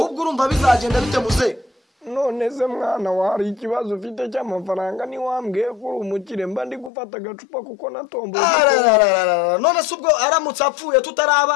ubwo urumva bizagenda bite muze none se mwana wa hari ikibazo ufite cy'amafaranga ni wambwiye ko uri umukire mba ndi gufata agacupa kuko natomboye none se ubwo aramutse apfuye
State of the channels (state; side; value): drops out; right; at 6.9 s